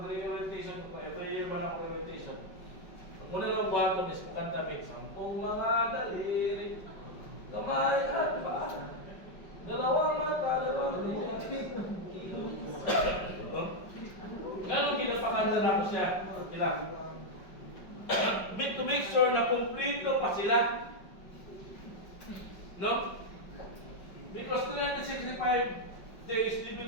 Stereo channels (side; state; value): right; late; 5.2 ms